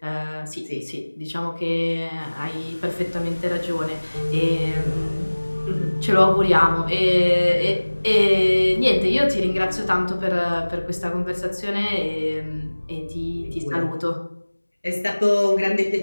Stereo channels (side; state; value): both; inverted; correlation -1.00